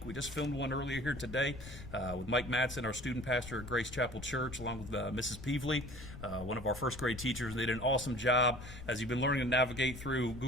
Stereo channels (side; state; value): left; noise; rumble, 12 dB below the sound